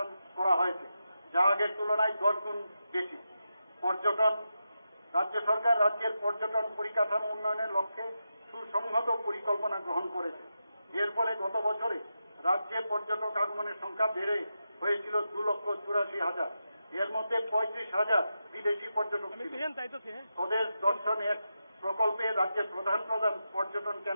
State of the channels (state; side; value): inverted; both; correlation -0.88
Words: করা হয়েছে, যা আগের তুলনায় 10 গুণ বেশি। পর্যটন, রাজ্য সরকার রাজ্যের পর্যটন পরিকাঠামো উন্নয়নের লক্ষ্যে সুসংহত পরিকল্পনা গ্রহণ করেছে। এর ফলে গত বছরে রাজ্যে পর্যটক আগমনের সংখ্যা বেড়ে হয়েছিল 2,84,000। এর মধ্যে 35,000 বিদেশি পর্যটক ছিল। স্বদেশ দর্শন এক প্রকল্পে রাজ্যের প্রধান পর্যটন